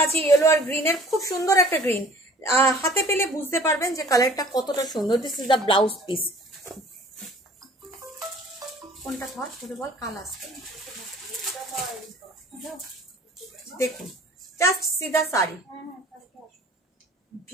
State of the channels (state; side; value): normal; both; correlation 0.50